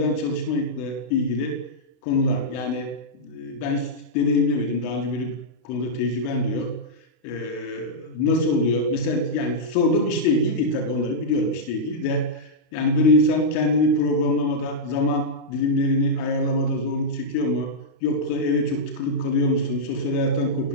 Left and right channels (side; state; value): right; late; 32 ms